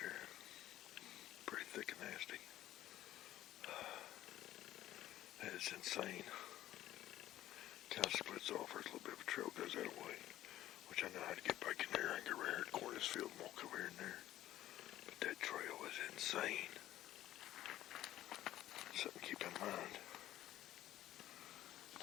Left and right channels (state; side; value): quieter; right; 13.8 dB